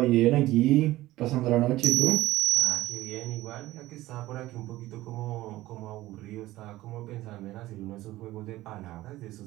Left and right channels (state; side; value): quieter; left; 16.8 dB